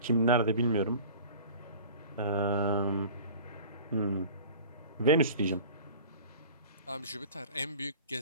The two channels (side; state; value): both; inverted; correlation -0.41